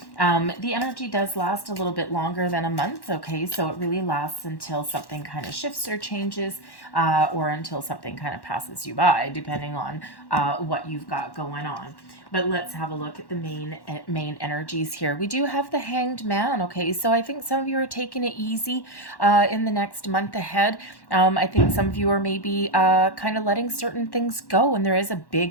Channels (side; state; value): right; late; 1.1 ms